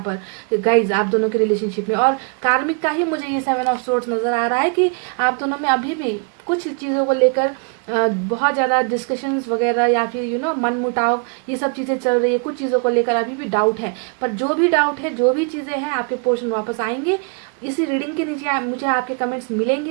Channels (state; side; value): quieter; left; 38.3 dB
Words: पर गाइज आप दोनों के रिलेशनशिप में, और कार्मिक का ही मुझे ये 7 ऑफ सोर्ड्स नज़र आ रहा है कि आप दोनों में अभी भी कुछ चीज़ों को लेकर बहुत ज़्यादा डिस्कशंस वगैरह, या फिर मन मुटाव, ये सब चीज़ें चल रही है। कुछ चीज़ों को लेकर अभी भी डाउट है, पर जो भी डाउट है, जो भी चीज़ें हैं, आपके पोर्शन वापस आएंगे। इसी रीडिंग के नीचे मुझे आपके कमेंट्स